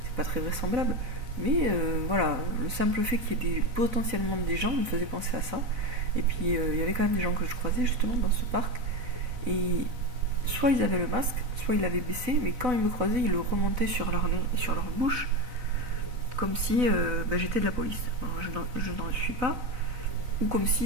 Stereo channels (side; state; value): left; late; 4.0 ms